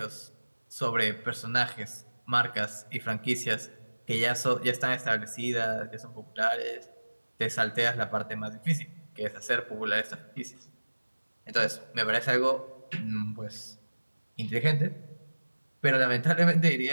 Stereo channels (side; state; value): both; inverted; correlation -1.00